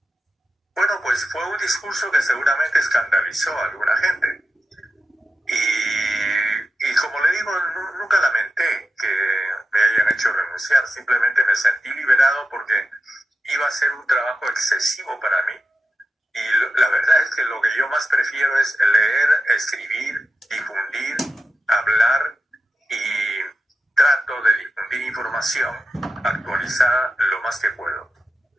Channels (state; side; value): normal; both; correlation 0.90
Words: Bueno, pues fue un discurso que seguramente escandalizó a alguna gente. Y como le digo, nunca lamenté que me hayan hecho renunciar, simplemente me sentí liberado porque iba a ser un trabajo excesivo para mí. Y la verdad es que lo que yo más prefiero es leer, escribir, difundir, hablar, y trato de difundir información actualizada lo más que puedo.